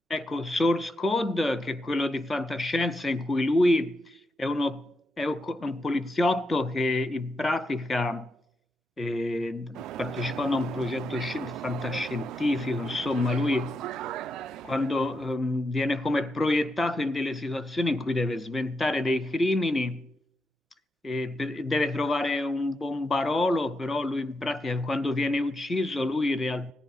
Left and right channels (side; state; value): both; normal; correlation 0.84